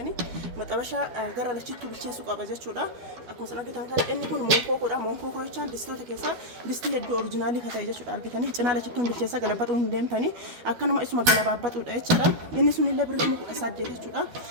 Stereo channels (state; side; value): late; left; 12 ms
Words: maxabashaa gara lachitti bilcheessuu qaba jechuudha akkuma san argitan kana inni kun monkokoodha monkokoo jechaan distoota keessaa distii hedduu oriijinaalii ka ta'e jechuudha argitanii cinaa lachittuun bilcheessaa galabaxuu hin deemtanii akkanuma isuma galabaabaxuudha jechuudha inni sunillee birrii 8,000 jechuudha